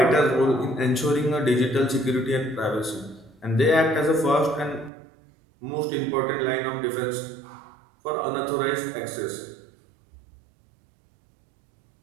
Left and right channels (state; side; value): drops out; left; at 4.9 s